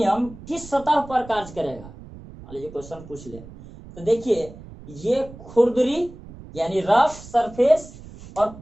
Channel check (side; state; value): right; noise; rumble, 17 dB below the sound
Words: किस सतह पर कार्य करेगा, मान लीजिए क्वेश्चन पूछ ले, तो देखिए ये खुरदरी यानी रफ सरफेस और